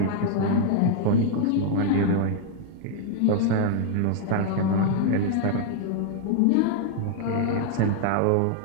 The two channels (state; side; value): different; both; correlation 0.00